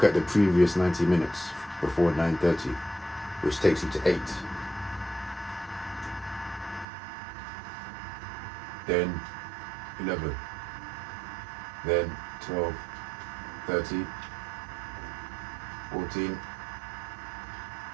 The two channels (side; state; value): left; drops out; at 6.9 s